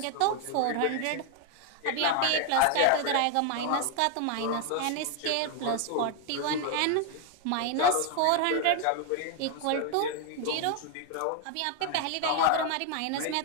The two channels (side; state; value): both; different; correlation 0.01